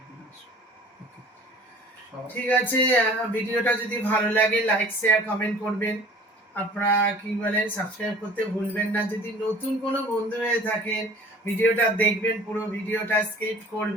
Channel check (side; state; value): both; normal; correlation 0.47